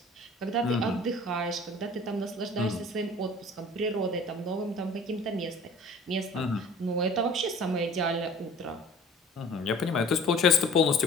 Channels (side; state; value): both; normal; correlation 0.47